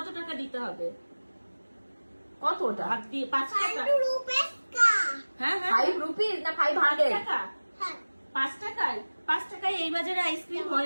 টাকা দিতে হবে? কতটা? হাত দিয়ে 5 টাকা। 5 রুপে কা। হ্যাঁ 5 রুপিস না 500 টাকা? হ্যাঁ। 5 টাকায় এই বাজারে আইসক্রিম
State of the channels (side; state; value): both; inverted; correlation -1.00